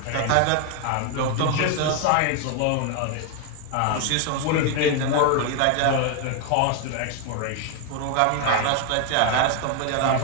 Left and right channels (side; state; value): both; different; correlation 0.01